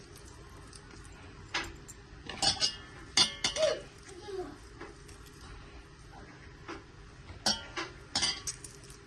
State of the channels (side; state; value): both; identical; correlation 1.00